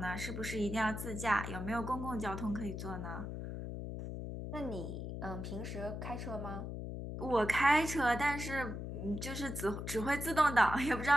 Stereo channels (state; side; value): noise; left; hum, 6 dB below the sound